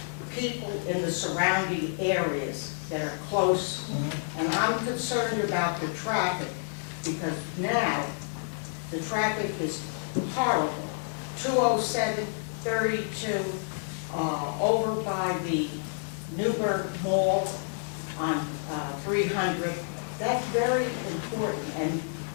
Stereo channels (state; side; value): silent; right; digital silence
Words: people in the surrounding areas that are close. And I'm concerned about the traffic, because now the traffic is horrible. 207, 32, over by the Newburgh Mall on 300. That's very important, and